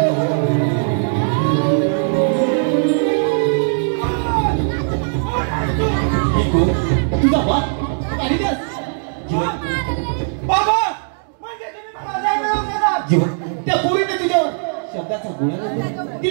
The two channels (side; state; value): left; silent; digital silence